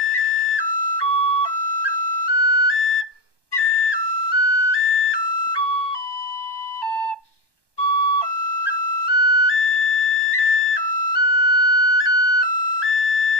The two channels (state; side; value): late; right; 1.1 ms